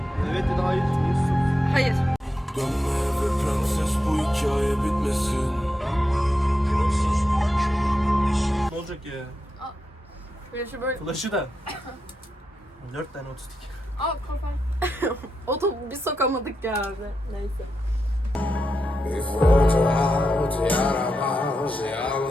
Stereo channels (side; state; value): both; normal; correlation 0.87